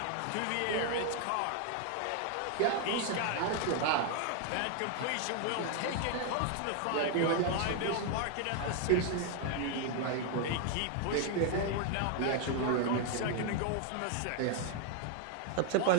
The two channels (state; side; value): different; both; correlation 0.00